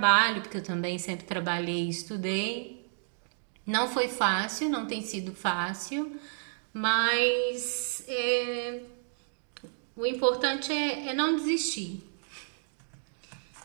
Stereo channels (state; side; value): silent; left; digital silence